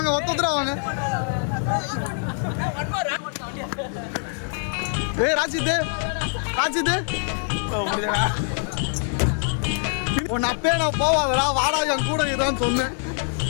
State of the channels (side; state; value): right; silent; 63 dB below the other